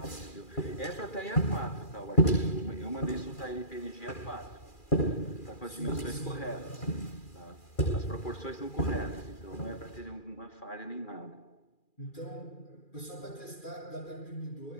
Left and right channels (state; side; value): late; right; 2.4 ms